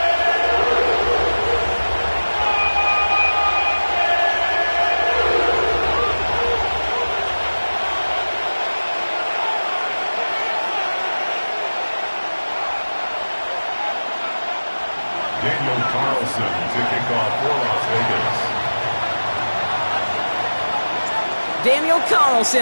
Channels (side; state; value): both; inverted; correlation -1.00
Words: Daniel Carlson to kick off for Las Vegas. Daniel